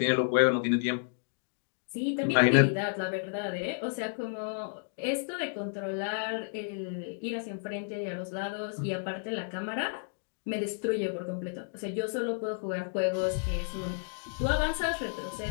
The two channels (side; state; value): right; silent; digital silence